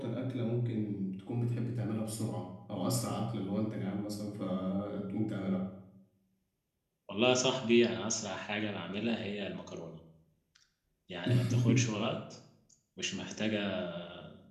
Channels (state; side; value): identical; both; correlation 1.00